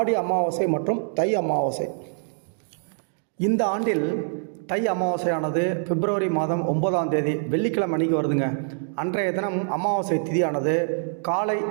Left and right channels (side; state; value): left; silent; digital silence